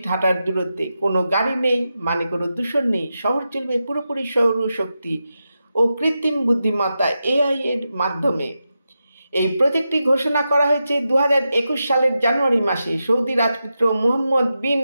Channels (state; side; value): inverted; both; correlation -0.89